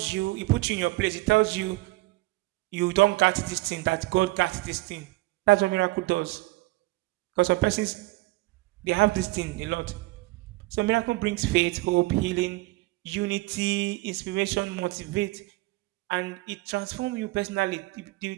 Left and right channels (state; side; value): quieter; left; 20.6 dB